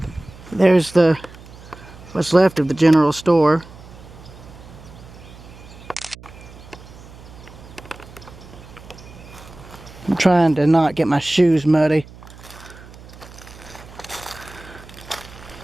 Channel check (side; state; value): right; noise; hum, 19 dB below the sound